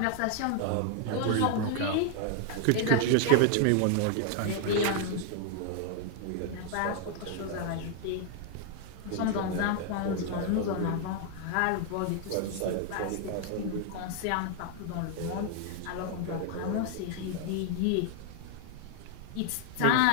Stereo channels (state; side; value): different; both; correlation 0.00